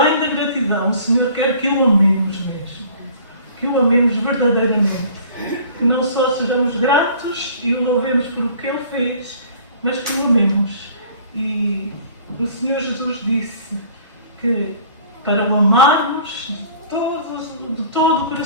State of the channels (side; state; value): both; inverted; correlation -0.50